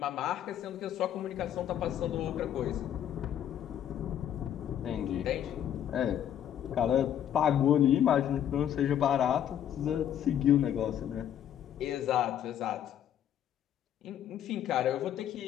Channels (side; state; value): right; quieter; 10.2 dB